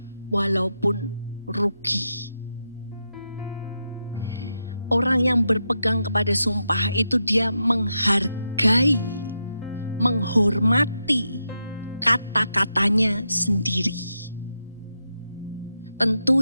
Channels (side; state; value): both; inverted; correlation -0.86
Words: walaupun rugi. Orang yang berpegang kepada sumpah itu dia menghargai, menghormati kata-katanya sendiri.